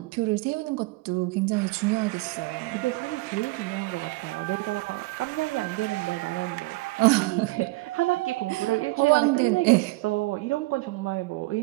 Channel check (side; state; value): left; quieter; 22.0 dB